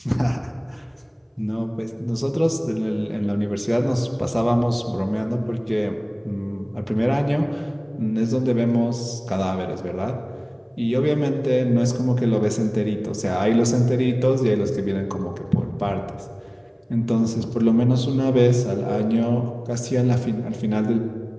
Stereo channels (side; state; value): both; identical; correlation 1.00